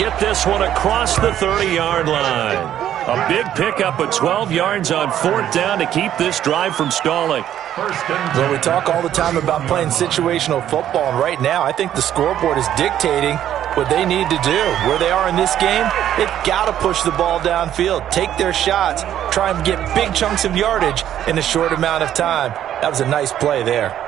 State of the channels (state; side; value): quieter; left; 11.1 dB